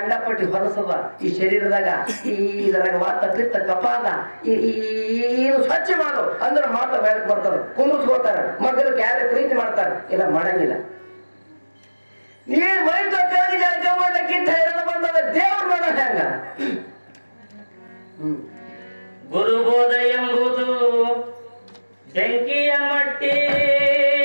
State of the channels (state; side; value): inverted; both; correlation -1.00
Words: ಹೊಲಸದ ಈ ಶರೀರದಾಗ. ಇದರಾಗ ವಾತ ಪಿತ್ತ ಕಪಾಲ ಇದು ಸ್ವಚ್ಛ ಮಾಡು ಅಂದ್ರೆ ಮಾತ್ರ ಬೆಳಕ್ ಬರ್ತಾರ, ಕುಂದಿಸ್ಕೋತಾರ. ಮೊದಲು ಯಾರು ಪ್ರೀತಿ ಮಾಡ್ತಾರ, ಇಲ್ಲ ಮಾಡಂಗಿಲ್ಲ. ನೀ ಮೈ ತೊಕ್ಕಾಗಿ ಜಳಕ ಮಾಡ್ಲಿಕ್ಕಿಂತ ಹೈರಾಣ ಬಂದದ ದೇವ್ರು ನೋಡ ಹೆಂಗ. ಗುರುಬೋಧ ಎಂಬುದು ಬೆಂಕಿಯ ಮಟ್ಟಿ,